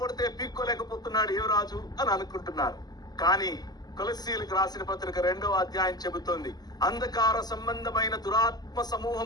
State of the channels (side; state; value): right; late; 0.20 ms